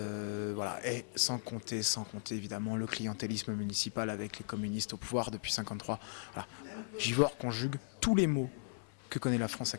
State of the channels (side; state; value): right; silent; 53 dB below the other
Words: Et sans compter évidemment le clientélisme municipal avec les communistes au pouvoir depuis 1953. Voilà. Givors conjugue tous les maux que connaît la France